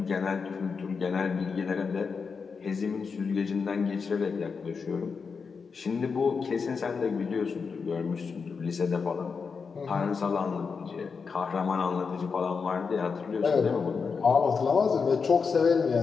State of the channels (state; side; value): quieter; right; 5.3 dB